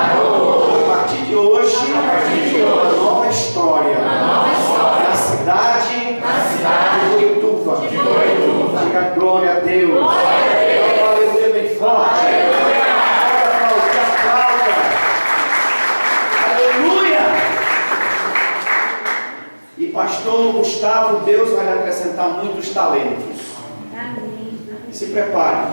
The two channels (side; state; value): both; inverted; correlation -1.00